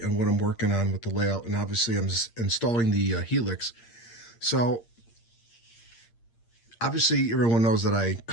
on what I'm working on with the layout, and obviously I'm installing the Helix. So obviously everyone knows that I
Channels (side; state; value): right; late; 8.6 ms